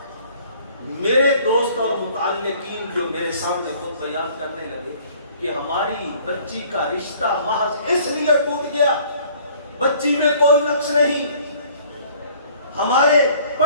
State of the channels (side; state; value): both; inverted; correlation -0.55